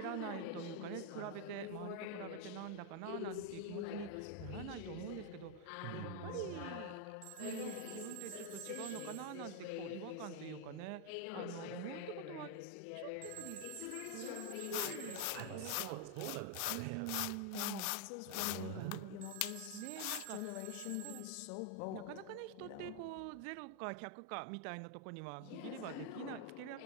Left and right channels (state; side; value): different; both; correlation 0.01